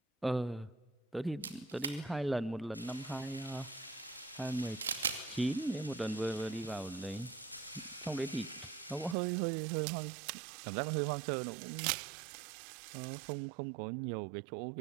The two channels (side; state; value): left; drops out; at 9.2 s